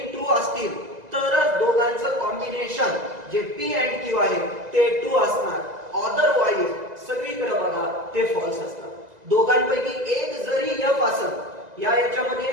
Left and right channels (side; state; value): left; late; 2.0 ms